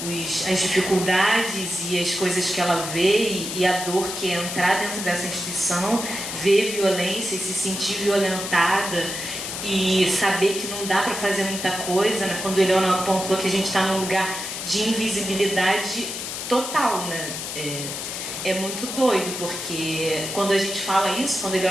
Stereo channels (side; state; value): left; noise; hiss, 6 dB below the sound